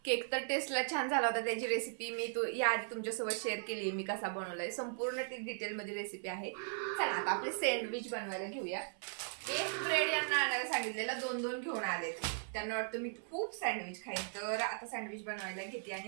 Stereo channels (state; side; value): silent; left; 52 dB below the other